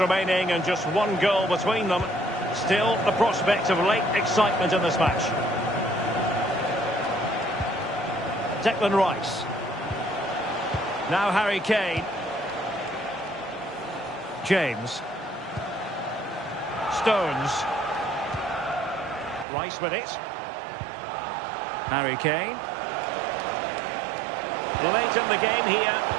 remaining and just one goal between them, still the prospect of late excitement in this match. Declan Rice. Now Harry Kane. James. Stones. Rice with it. Harry Kane. Late in the game here,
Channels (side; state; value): left; drops out; at 19.5 s